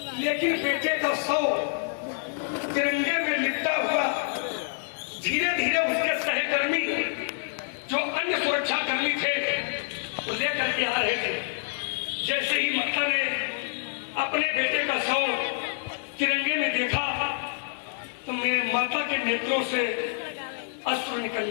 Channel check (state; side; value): silent; right; digital silence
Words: लेकिन बेटे का शव तिरंगे में लिपटा हुआ धीरे धीरे उसके सहकर्मी जो अन्य सुरक्षा कर्मी थे वो लेकर के आ रहे थे। जैसे ही माता ने अपने बेटे का शव तिरंगे में देखा तो मैं माता के नेत्रों से अश्रु